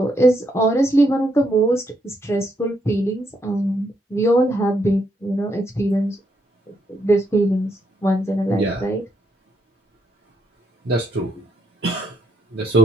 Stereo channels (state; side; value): normal; both; correlation 0.77